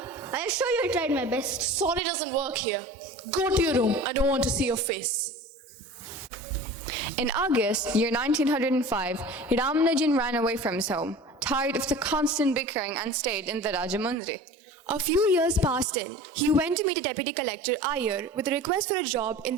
I assure you I tried my best. Sorry doesn't work here. Go to your room. I don't want to see your face. In August, year 1905, Ramanujan ran away from his home, tired of the constant bickering, and stayed in the Rajamundry. A few years passed in. He went to meet a deputy collector, Iyer, with a request for a job in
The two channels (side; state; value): both; normal; correlation 0.39